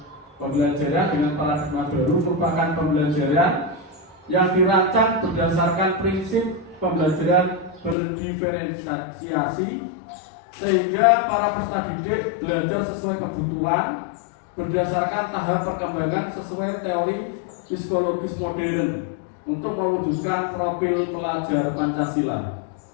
pembelajaran dengan paradigma baru merupakan pembelajaran yang dirancang berdasarkan prinsip pembelajaran berdiferensiasi, sehingga para peserta didik belajar sesuai kebutuhan berdasarkan tahap perkembangan sesuai teori psikologis modern untuk mewujudkan profil pelajar Pancasila.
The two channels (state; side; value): drops out; right; at 8.0 s